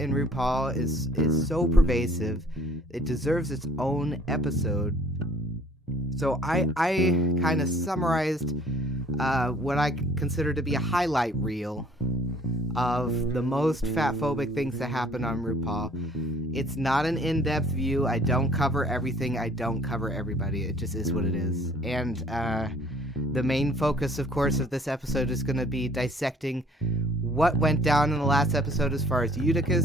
RuPaul is so pervasive, it deserves its own episode. So I kind of summarized what I consider to be a highlight reel of the most fatphobic things that happen on RuPaul. It's not an in-depth view. I don't cover everything. I don't cover everybody. It just is what it is. And the main focus, of course, of this episode is going to be dissecting what went down in the last episode as far as Utica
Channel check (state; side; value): normal; both; correlation 0.57